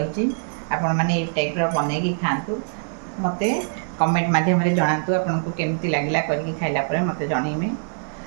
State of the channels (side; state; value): left; silent; digital silence